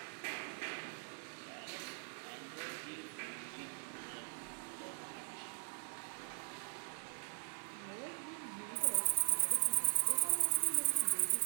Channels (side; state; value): left; silent; 50 dB below the other